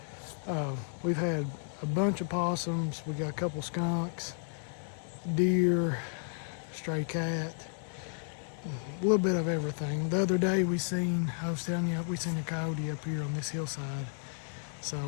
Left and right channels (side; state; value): right; silent; digital silence